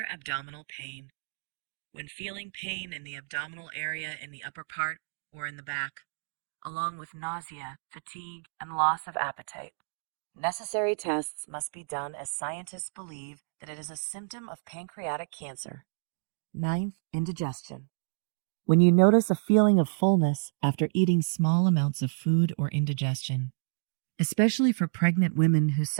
abdominal pain. When feeling pain in the abdominal area in the upper part or in the back, along with nausea, fatigue, and loss of appetite, necessary tests must be done as scientists believe that it is a symptom of pancreatic cancer. Ninth, indigestion. When you notice a feeling of fullness after eating small amounts of food or indigestion, especially for pregnant women who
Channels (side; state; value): left; silent; digital silence